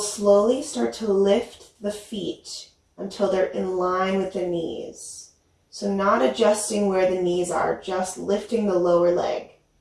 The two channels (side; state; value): both; identical; correlation 1.00